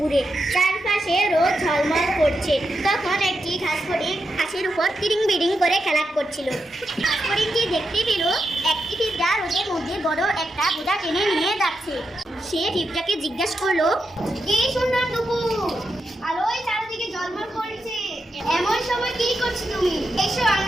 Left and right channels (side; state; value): both; normal; correlation 0.86